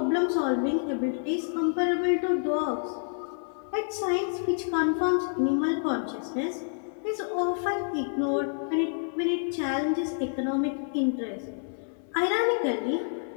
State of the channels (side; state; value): right; silent; 56 dB below the other